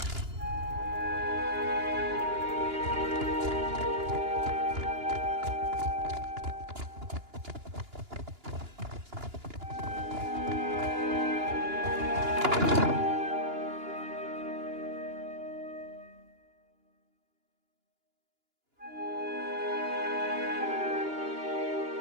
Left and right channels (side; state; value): left; late; 2.9 ms